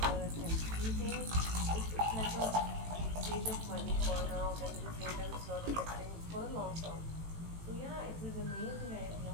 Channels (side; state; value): left; late; 18 ms